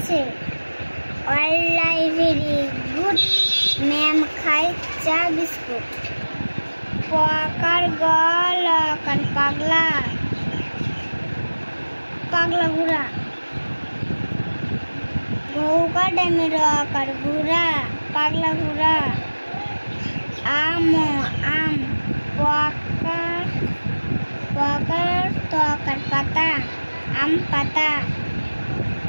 অল ভেরি গুড, ম্যাম খাই চা বিস্কুট। পকার গল কার পাগলা, পাগলা ঘোড়া। গৌকা ড্যামের আকার ঘোড়া, পাগলা ঘোড়া। আম আম, পকার পকার তকার পাতা, আম পাতা।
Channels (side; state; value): both; inverted; correlation -1.00